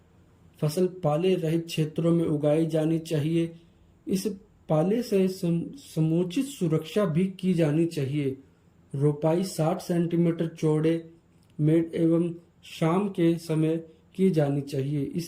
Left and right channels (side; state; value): both; identical; correlation 1.00